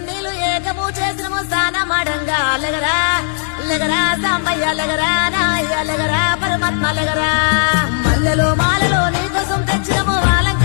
ఏకము చేసినము స్నానమాడంగా లగరా లగరా సాంబయ్య లగరా నాయ్య లగరా పరమాత్మ లగరా మల్లెలో మాలలో నీకోసం తెచ్చినము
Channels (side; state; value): right; silent; digital silence